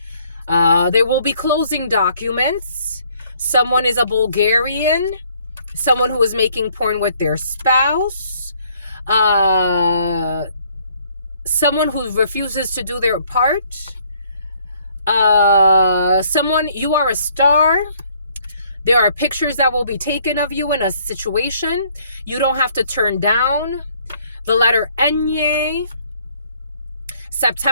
There will be closing documents. Someone is a Bulgarian. Someone who is making porn with their spouse. Someone who refuses to do their part. Someone, you are a star. There are pictures that will be taken of you in a situation. You don't have to turn down. The letter Enye.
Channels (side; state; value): both; inverted; correlation -0.63